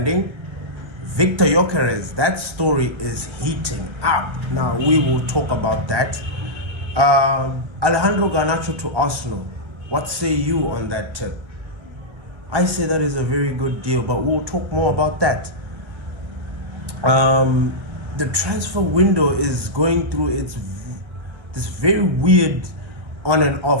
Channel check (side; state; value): left; late; 1.3 ms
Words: Victor Gyokerez, that story is heating up. Now, we will talk about that. Alejandro Garnacho to Arsenal. What say you on that tip? I say that is a very good deal, but we'll talk more about that. The transfer window is going through this very weird on and